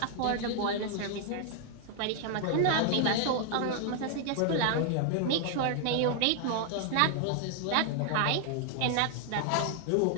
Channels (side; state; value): both; different; correlation 0.00